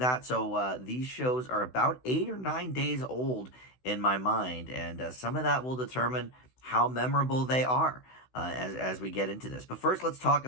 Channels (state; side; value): late; right; 16 ms